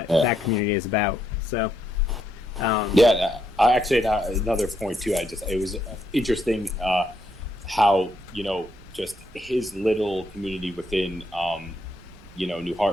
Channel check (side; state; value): right; noise; rumble, 22 dB below the sound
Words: that community is about. So I actually, another point too, it was interesting how just his little community within, New